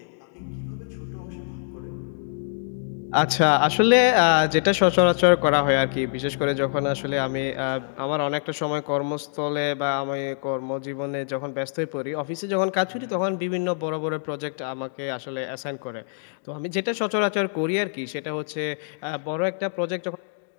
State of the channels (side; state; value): right; silent; digital silence